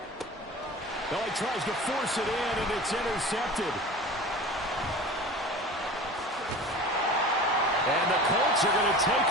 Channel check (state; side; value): normal; both; correlation 0.36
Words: Well, he tries to force it in, and it's intercepted. And the Colts are going to take